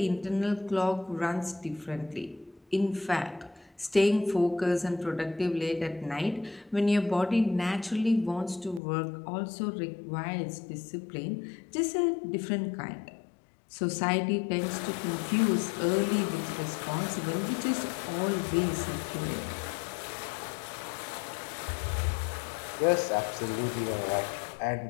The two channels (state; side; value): drops out; right; at 8.8 s